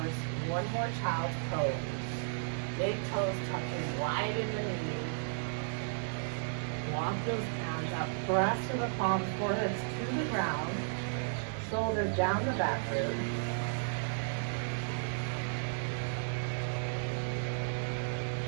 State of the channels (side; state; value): left; silent; digital silence